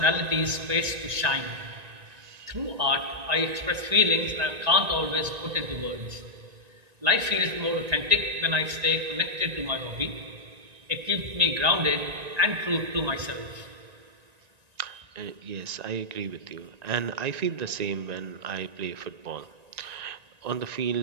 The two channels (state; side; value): late; left; 1.9 ms